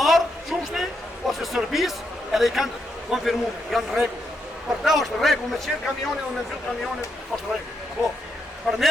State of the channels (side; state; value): both; normal; correlation 0.81